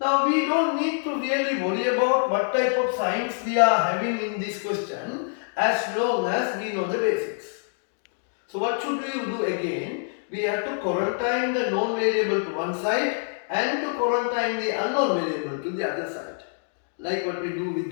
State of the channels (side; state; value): right; silent; digital silence